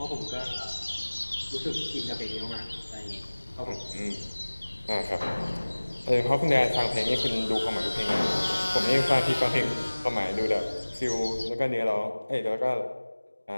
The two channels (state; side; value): inverted; both; correlation -1.00